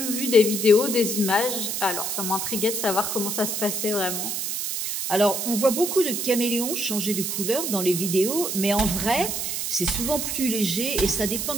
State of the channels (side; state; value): right; noise; hiss, 2 dB below the sound